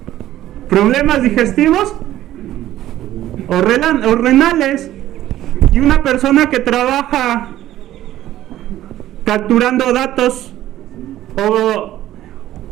problemas digestivos o renales. Y una persona que trabaja capturando datos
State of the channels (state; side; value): quieter; left; 13.6 dB